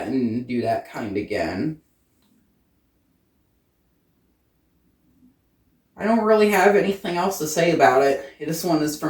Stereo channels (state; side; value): identical; both; correlation 1.00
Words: and do that kind again. I don't really have anything else to say about it. This one is